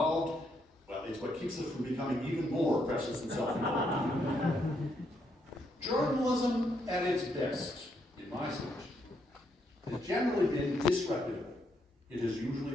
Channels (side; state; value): both; normal; correlation 0.76